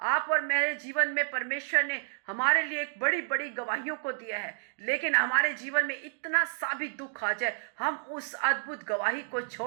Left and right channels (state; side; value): silent; left; digital silence